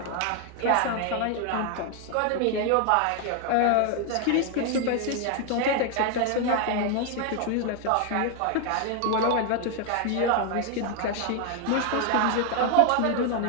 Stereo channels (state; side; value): different; both; correlation 0.01